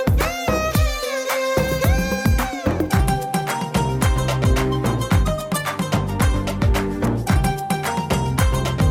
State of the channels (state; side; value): identical; both; correlation 1.00